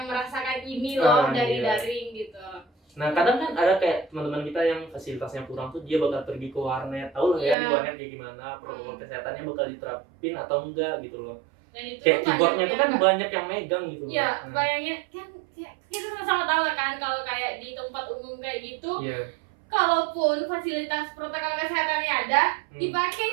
merasakan ini loh dari Iya. daring gitu. Nah kadang kan ada kayak teman-teman kita yang fasilitasnya kurang tuh, dia bakal pergi ke warnet, tahu lah ya Iya. di warnet kayak gimana, protokol kesehatannya bakal diterapin atau enggak gitu loh. Dan itu Kayak tuh keyboardnya tuh kan yang banyak yang megang gitu. Iya, Nah, bayangin kan kita sama-sama tahu kan kalau kayak di tempat umum kayak gitu, iya. kalaupun fasilitas protokol kesehatannya ada, dipakai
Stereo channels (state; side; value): drops out; left; at 7.6 s